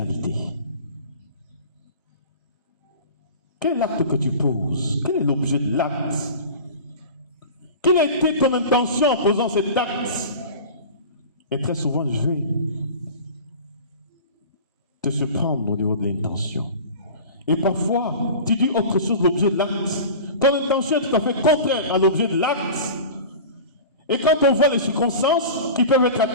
Quel est l'acte que tu poses? Quel est l'objet de l'acte? Quelle a été ton intention en posant cet acte? Et très souvent, je vais te surprendre au niveau de l'intention. Et parfois, tu dis autre chose de l'objet de l'acte. Ton intention est tout à fait contraire à l'objet de l'acte. Et quand on voit les circonstances qui peuvent être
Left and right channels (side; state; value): both; inverted; correlation -0.36